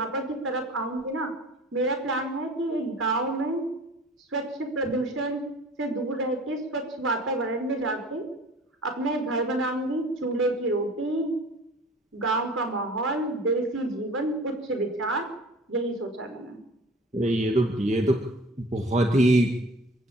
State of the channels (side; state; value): both; normal; correlation 0.44